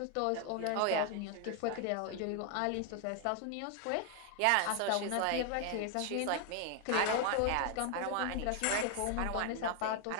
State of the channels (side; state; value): both; different; correlation 0.01